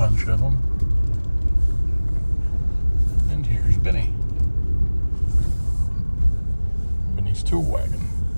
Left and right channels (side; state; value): both; inverted; correlation -1.00